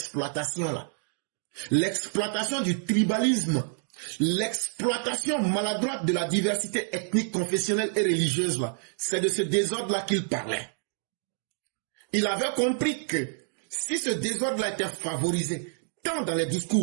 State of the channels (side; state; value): left; silent; 59 dB below the other